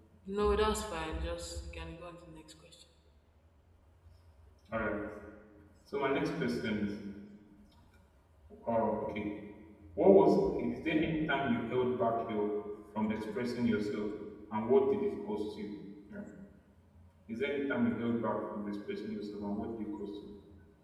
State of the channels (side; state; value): both; identical; correlation 1.00